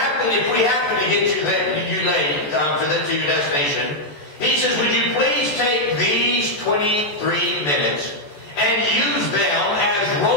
we happen to get you late to your destination, he says, would you please take these 23 minutes and use them as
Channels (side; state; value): right; late; 14 ms